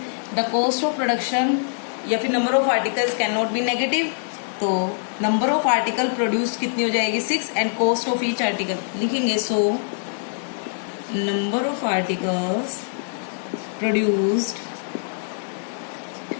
the cost of production या फिर number of articles can not be negative. तो नंबर ऑफ आर्टिकल प्रोड्यूस कितनी हो जाएगी, 6, and cost of each article लिखेंगे. So number of articles produced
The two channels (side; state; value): right; silent; digital silence